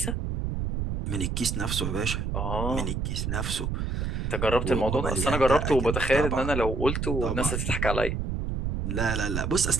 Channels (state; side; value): noise; right; rumble, 2 dB below the sound